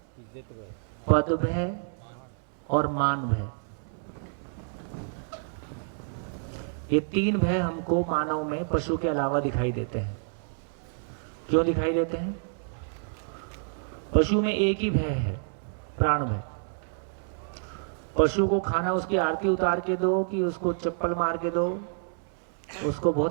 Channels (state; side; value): silent; left; digital silence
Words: पद भय और मान भय। ये 3 भय हमको मानव में पशु के अलावा दिखाई देते हैं। क्यों दिखाई देते हैं? पशु में एक ही भय है, प्राण भय। पशु को खाना उसकी आरती उतार के दो कि उसको चप्पल मार के दो, उसको